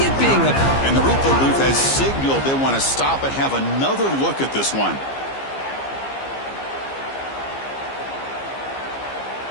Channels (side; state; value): right; late; 15 ms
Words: being up. And the replay booth has signaled they want to stop and have another look at this one.